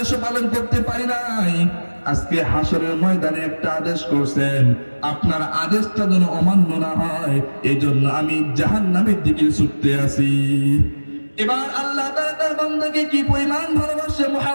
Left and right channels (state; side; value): inverted; both; correlation -1.00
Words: পালন করতে পারি নাই। আজকে হাসরের ময়দানে একটা আদেশ করছেন, আপনার আদেশটা যেন অমান্য না হয়, এই জন্য আমি জাহান্নামের দিকে ছুটতে আছি। এবার আল্লাহ তাআলা তার বান্দাকে কি পরিমাণ ভালোবাসে,